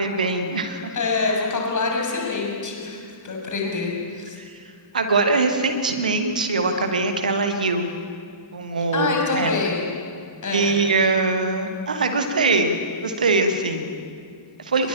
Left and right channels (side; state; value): both; inverted; correlation -0.37